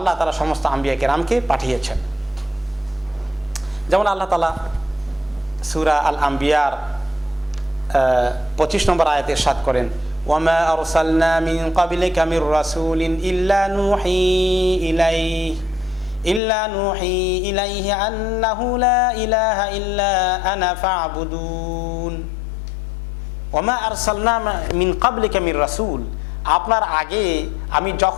তাআলা সমস্ত আম্বিয়া কেরামকে পাঠিয়েছেন। যেমন আল্লাহ তাআলা সূরা আল আম্বিয়ার 25 নম্বর আয়াতে ইরশাদ করেন, ওয়ামা আরসালনা মিন ক্বাবলিকা মির রাসূলিন ইল্লা নুহি ইলাইহি আন্নাহু লা ইলাহা ইল্লা আনা ফা'বুদুন। ওয়ামা আরসালনা মিন ক্বাবলিকা মির রাসূল, আপনার আগে আমি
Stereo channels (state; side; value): drops out; right; at 16.4 s